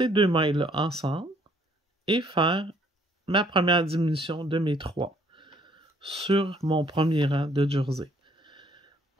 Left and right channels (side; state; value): both; normal; correlation 0.63